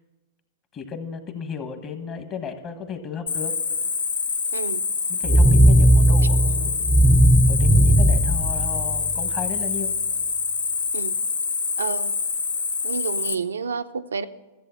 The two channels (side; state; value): both; normal; correlation 0.55